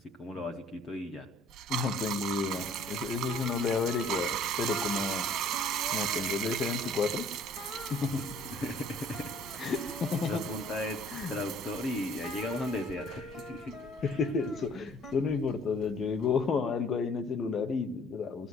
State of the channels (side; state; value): both; normal; correlation 0.56